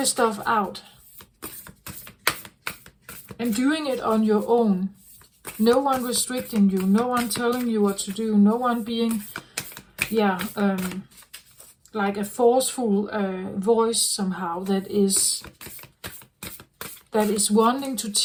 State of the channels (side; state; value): both; identical; correlation 1.00